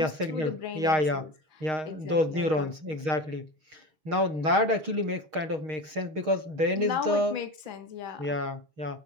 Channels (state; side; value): late; left; 6.4 ms